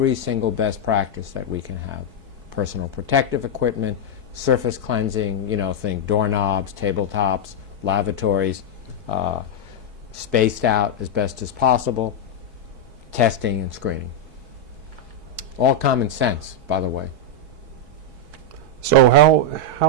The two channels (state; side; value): late; left; 4.6 ms